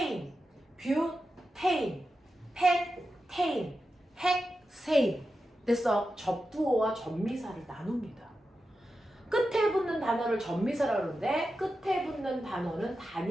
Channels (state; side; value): normal; both; correlation 0.91